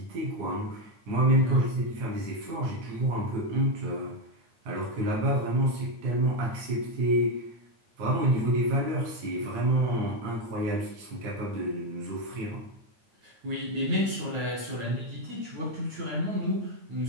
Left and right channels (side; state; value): left; late; 9.2 ms